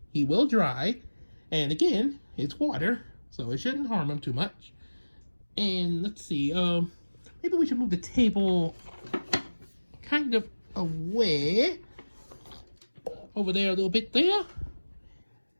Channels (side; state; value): both; inverted; correlation -1.00